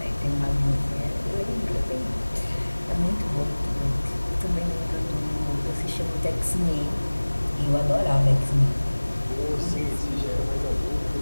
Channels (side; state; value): both; inverted; correlation -1.00